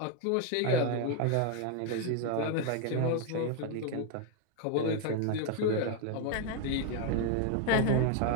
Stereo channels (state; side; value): different; both; correlation 0.01